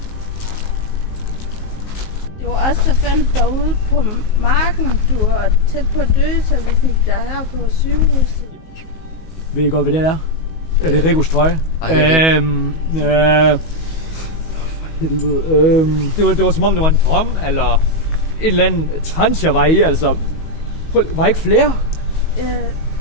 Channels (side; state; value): right; late; 19 ms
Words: Det var os, der fandt dig ude på marken. Du var tæt på at dø, så vi fik dig her på sygehuset. Ved I godt, hvad det er? Ja, det er Rigos trøje. For helvede. Det var som om, det var en drøm, eller et eller andet trans, jeg var i, altså. Var ikke flere?